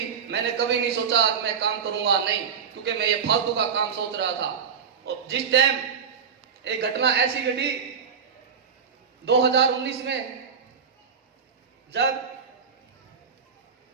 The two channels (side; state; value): left; quieter; 6.6 dB